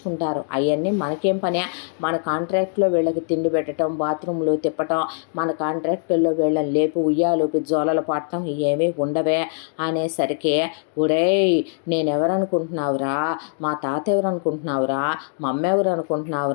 అవన్నీ మనకేం పనే, మన కాంట్రాక్ట్లో వీళ్ళకి తిండి పెట్టడం, బాత్రూంలో తిప్పటం, మన కాంట్రాక్టుల్లో వీళ్ళని లేపు ఉయ్యాలోపి జోలలు పట్టడం ఏమీ ఉండవే అనేసరికి, ఒరేయ్ నేనెవరనుకుంటున్నావురా, మా తాత ఎవరనుకుంటున్నావురా, మా అమ్మ ఎవరు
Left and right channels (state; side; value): silent; right; digital silence